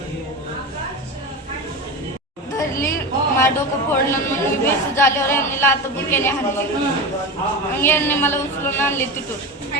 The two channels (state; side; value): normal; both; correlation 0.24